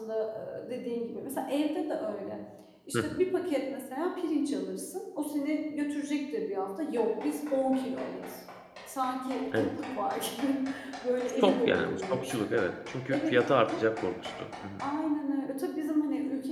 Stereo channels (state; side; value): identical; both; correlation 1.00